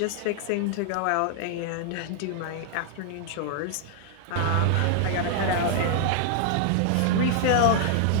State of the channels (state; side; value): different; both; correlation 0.00